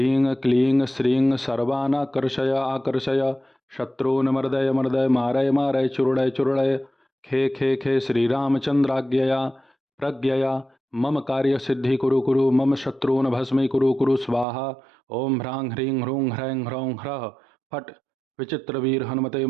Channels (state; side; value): drops out; left; at 14.5 s